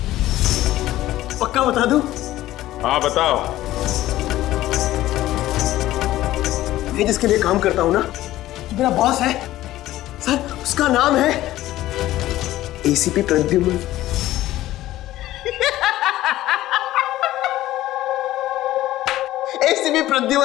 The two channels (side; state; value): right; quieter; 15.1 dB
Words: पक्का बता दो? हाँ बताओ। मैं जिसके लिए काम करता हूं ना, मेरा बॉस है सर, उसका नाम है एसीपी प्रद्युमन। एसीपी